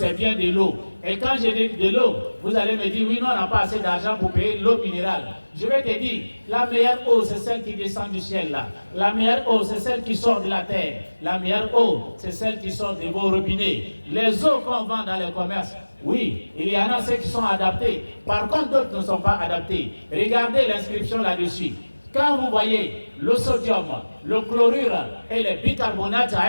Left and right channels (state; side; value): inverted; both; correlation -1.00